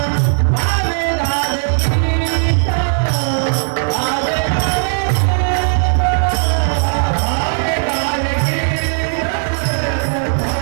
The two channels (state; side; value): silent; left; 69 dB below the other